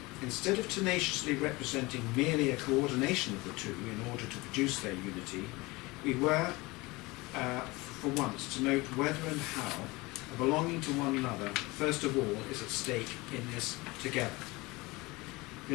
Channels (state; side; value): quieter; right; 22.9 dB